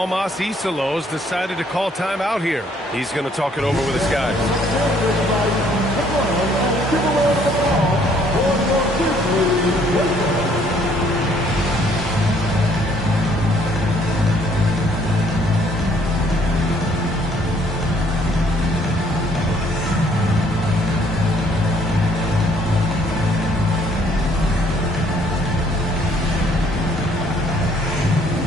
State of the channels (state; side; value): normal; both; correlation 0.63